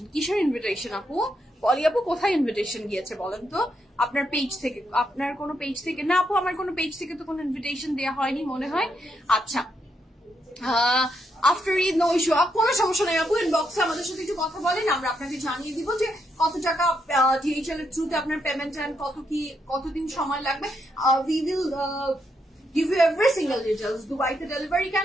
কিসের ইনভিটেশন আপু? পলি আপু কোথায় ইনভিটেশন গিয়েছে বলেন তো? আপনার পেজ থেকে? আপনার কোনো পেজ থেকে? না আপু, আমার কোনো পেজ থেকে তো কোনো ইনভিটেশন দেওয়া হয়নি মনে হয়। আচ্ছা, আফটার ঈদ নো ইস্যু, কোনো সমস্যা নেই আপু, ইনবক্সে আমাদের সাথে একটু কথা বলেন, আমরা আপনাকে জানিয়ে দিব যে কত টাকা ডিএইচএল এর থ্রুতে আপনার পেমেন্ট এন্ড কতদিন সময় লাগবে। We will give you every single details. দুবাইতে ডেলিভারি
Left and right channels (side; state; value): both; normal; correlation 0.79